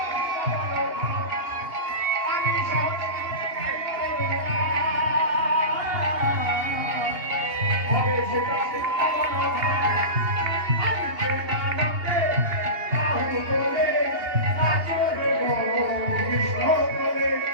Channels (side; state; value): left; late; 2.8 ms